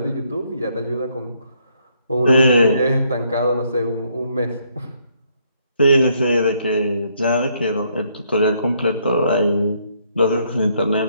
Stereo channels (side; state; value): both; inverted; correlation -0.71